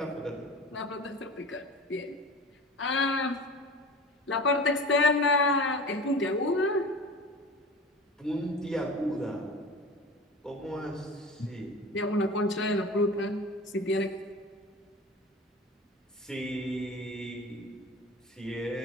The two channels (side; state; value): both; normal; correlation 0.35